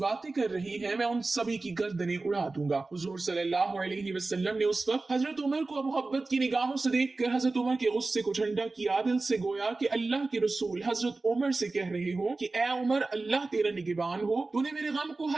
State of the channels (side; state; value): left; quieter; 3.5 dB